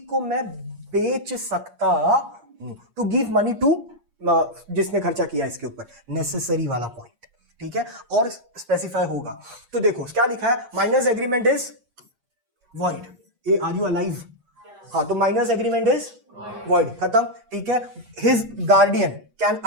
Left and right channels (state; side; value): late; left; 8.6 ms